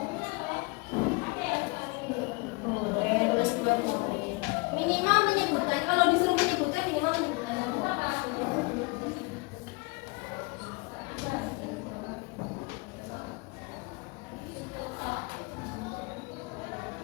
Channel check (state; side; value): quieter; right; 26.9 dB